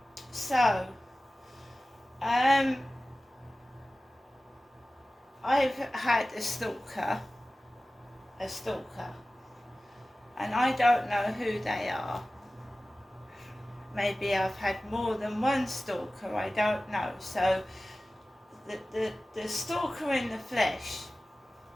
So, I've had a stalker, and I don't know who they are. Maybe I've had more than one stalker, I don't know. So, the stalker in the flesh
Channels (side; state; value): both; normal; correlation 0.96